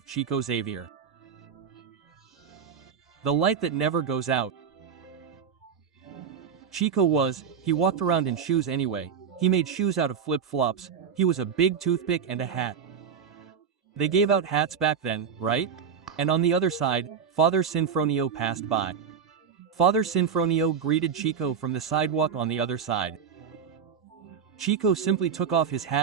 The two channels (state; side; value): quieter; left; 6.9 dB